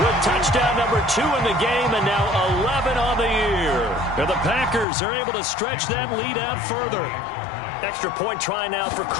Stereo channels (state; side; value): drops out; right; at 4.9 s